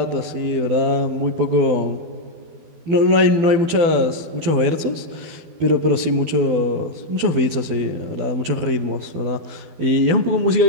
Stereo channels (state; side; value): late; left; 12 ms